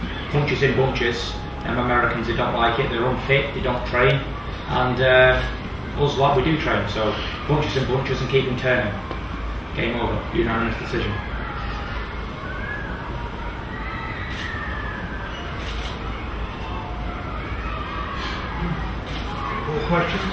Punches in bunches. Americans, they don't like it. They're unfit. They don't train, and us lot we do train. So punches in bunches and keep him turning. Game over. Unanimous decision. More questions?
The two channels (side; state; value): both; identical; correlation 1.00